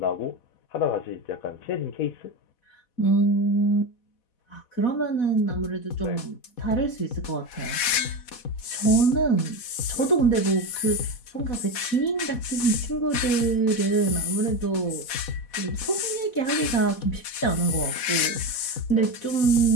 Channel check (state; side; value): late; right; 4.1 ms